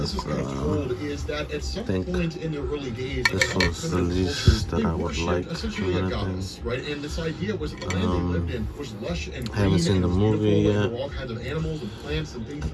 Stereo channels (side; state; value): both; identical; correlation 1.00